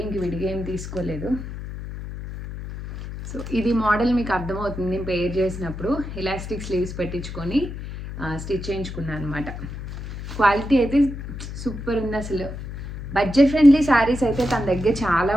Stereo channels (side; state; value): left; noise; hum, 9 dB below the sound